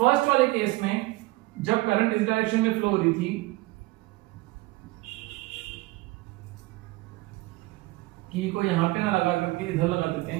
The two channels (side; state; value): left; quieter; 21.0 dB